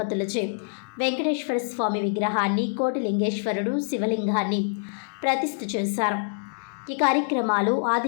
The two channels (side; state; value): right; silent; digital silence